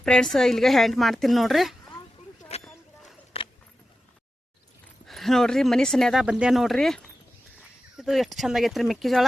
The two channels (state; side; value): normal; both; correlation 0.93